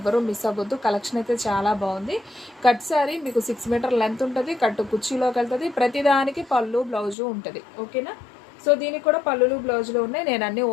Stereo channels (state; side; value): drops out; right; at 7.2 s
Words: మిస్ అవ్వద్దు. కలెక్షన్ అయితే చాలా బాగుంది. కట్ శారీ మీకు 6 మీటర్ లెంత్ ఉంటుంది, కట్టు కుర్చీలోకి వెళ్తుంది. ప్రతిదానికి పళ్ళు బ్లౌజు ఉంటుంది. ఓకేనా? సో దీనికి కూడా పళ్ళులు బ్లౌజులు ఉన్నాయి. నేను అన్నీ